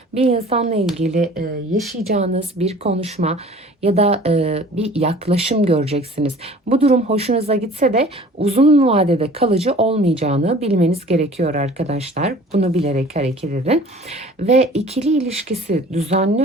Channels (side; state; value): both; normal; correlation 0.47